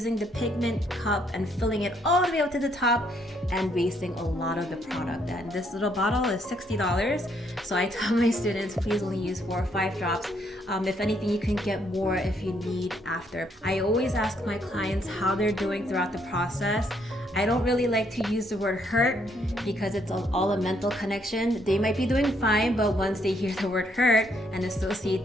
the pigment cup and filling it all the way up to the top and wasting a lot of the product. And this little bottle is $60. So I tell my students, please only use 4 or 5 drops. If anything, you can get more if you need after. I always ask my clients how they're doing throughout the process. I don't really like to use the word hurt because it's all a mental connection. They might be doing fine, but once they hear the word hurt and associate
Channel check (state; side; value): normal; both; correlation 0.71